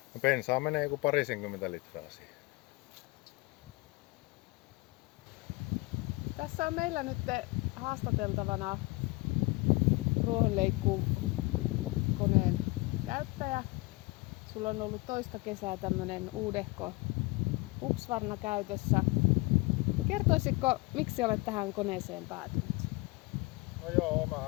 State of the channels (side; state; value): right; quieter; 23.8 dB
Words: No bensaa menee joku 20 litraa siihen. Tässä on meillä nyt haastateltavana ruohonleikkuukoneen käyttäjä. Sulla on ollut toista kesää tämmönen uudehko Husqvarna käytössä. Kertoisitko, miksi olet tähän koneeseen päätynyt? No joo,